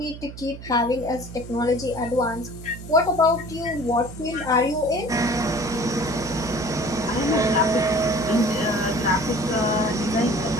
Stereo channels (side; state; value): right; noise; hum, 13 dB below the sound